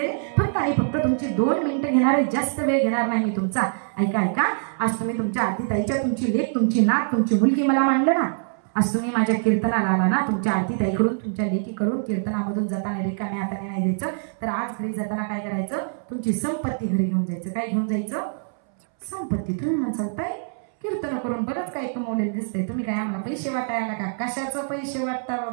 फक्त आणि फक्त तुमची 2 मिनिटं घेणार आहे, जास्त वेळ घेणार नाही मी तुमचा. ऐका. आज तुम्ही तुमच्या आरतीताईच्या, तुमची लेक, तुमची नात, तुमची मुलगी मला मानलं ना. आज तुम्ही माझ्या कीर्तनाला आला ना, तुमच्या आरतीताईकडून, तुमच्या लेकीकडून कीर्तनामधून जाताना रिकाम्या हाताने नाही जायचं. तर आज घरी जाताना काय करायचं? तुमची संपत्ती घरी घेऊन जायचं. काय घेऊन जायचं? संपत्ती. तुम्ही म्हणसाल ताई कीर्तन करून बरंच काही कमवलेलं दिसतंय, तुम्ही काय आम्हाला पैसे वाटायला का? कशाचं पैसे वाटता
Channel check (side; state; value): left; silent; 62 dB below the other